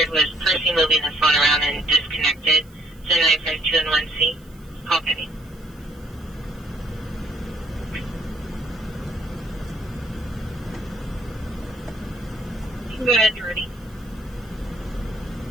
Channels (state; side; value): noise; right; hiss, 28 dB below the sound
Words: was Percy moving the phone around and disconnected. 7952 and 1C. Call Penny. Go ahead, you're ready.